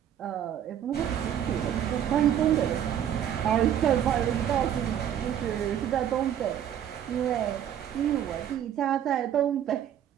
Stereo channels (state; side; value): quieter; left; 10.0 dB